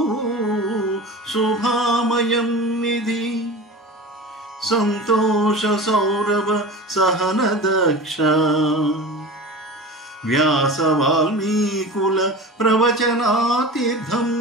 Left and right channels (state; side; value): normal; both; correlation 0.33